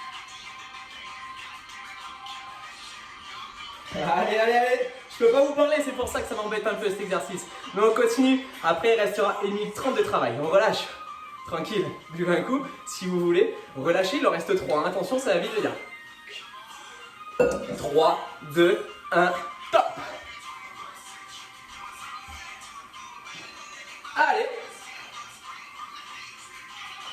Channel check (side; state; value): both; identical; correlation 1.00